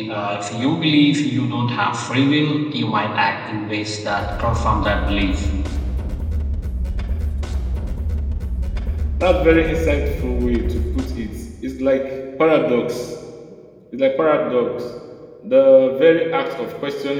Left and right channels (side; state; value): both; identical; correlation 1.00